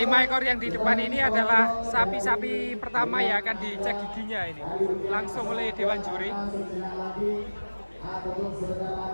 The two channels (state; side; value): inverted; both; correlation -1.00